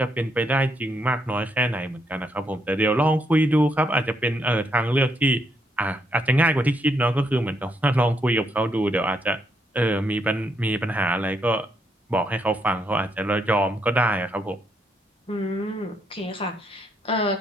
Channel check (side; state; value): both; normal; correlation 0.76